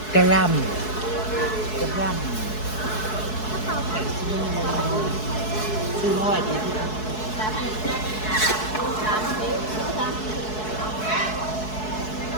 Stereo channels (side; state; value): right; late; 4.7 ms